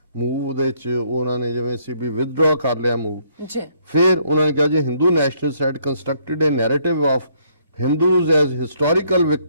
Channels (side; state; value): both; inverted; correlation -0.68